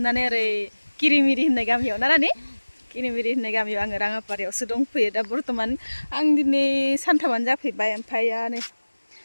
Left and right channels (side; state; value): both; inverted; correlation -1.00